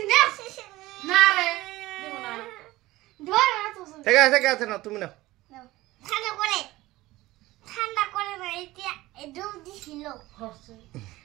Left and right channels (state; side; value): quieter; left; 18.1 dB